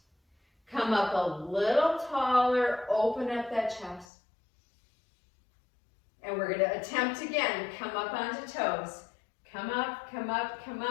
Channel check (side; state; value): right; drops out; at 4.0 s